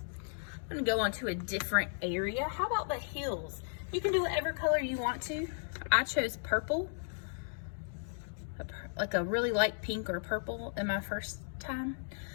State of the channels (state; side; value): silent; right; digital silence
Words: I'm gonna go on to a different area. How about the heels? You can do whatever color you want to. I chose purple, like a really light pink or purple in my first time.